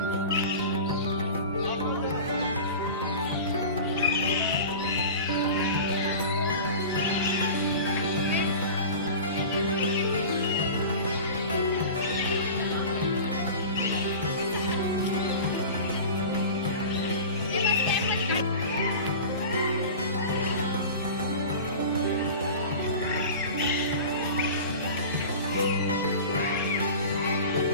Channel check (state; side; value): inverted; both; correlation -0.34